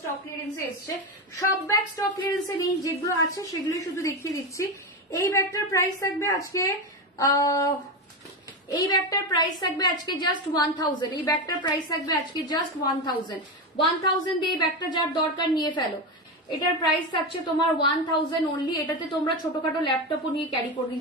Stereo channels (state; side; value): normal; both; correlation 0.16